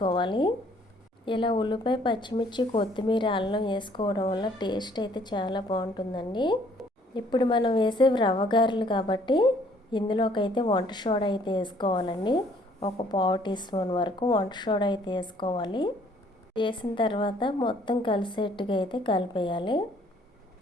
ఇలా ఉల్లిపాయ, పచ్చిమిర్చి, కొత్తిమీర, అల్లం వేసుకోవడం వల్ల టేస్ట్ అయితే చాలా బాగుంటుందండి. ఇప్పుడు మనం వేసే రవ్వ గారెలు కాబట్టి ఇందులోకి అయితే వంట సోడా అయితే వేసుకోవాలండి. 1 పావు టీ స్పూన్ వరకు వంట సోడా అయితే వేసుకోవాలి. వేసిన తర్వాత మొత్తం కలిసేట్టుగా అయితే కలిపేయాలి.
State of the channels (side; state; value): both; normal; correlation 0.61